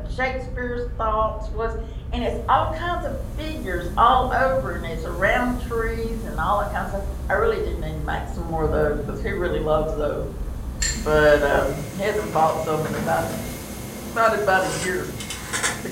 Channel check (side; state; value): both; identical; correlation 1.00